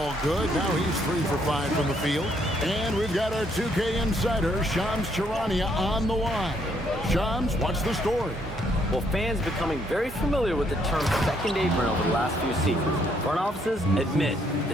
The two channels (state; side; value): normal; both; correlation 0.70